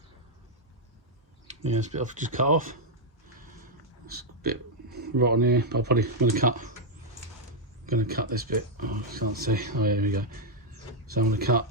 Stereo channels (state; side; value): normal; both; correlation -0.02